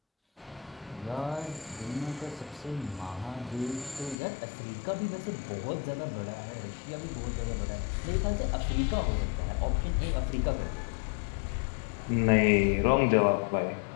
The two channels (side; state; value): right; drops out; at 4.2 s